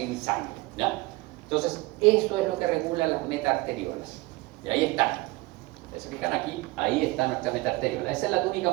sangre, ¿ya? Entonces, eso es lo que regula las metaarteriolas. Y ahí están. ¿Se fijan aquí? Ahí está nuestra metaarteriola. Esa es la túnica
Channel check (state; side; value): quieter; left; 21.6 dB